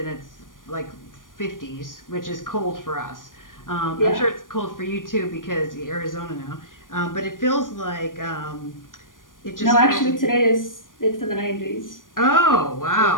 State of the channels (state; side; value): late; right; 0.90 ms